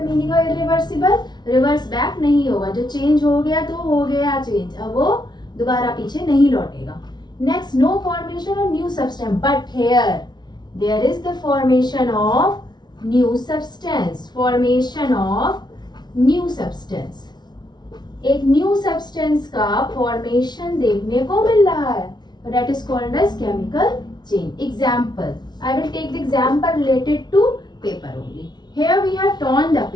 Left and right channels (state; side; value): late; right; 0.20 ms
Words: meaning of irreversible? Reverse back नहीं होगा, जो change हो गया तो हो गया चेंज, अब वो दोबारा पीछे नहीं लौटेगा. Next, no formation of new substance, but here there is the formation of new substance. Formation of new substance, एक न्यू सब्सटेंस का फॉर्मेशन देखने को मिल रहा है, that is called as chemical change. Example, I will take the example related to paper only. Here we have torn the